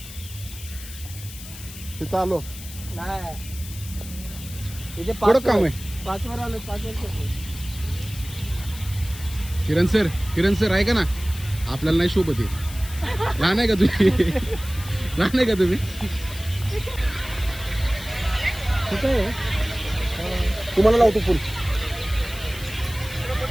तिथं आलो. थोडं काम आहे. 5 वर आलो. 5 वर्ष. किरण सर ऐका ना, आपल्याला नाही शोभत आहे. लहान आहे का तुम्ही? लहान आहे का तुम्ही? तुम्हाला लावतो फुल.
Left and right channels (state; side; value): noise; left; hiss, 14 dB below the sound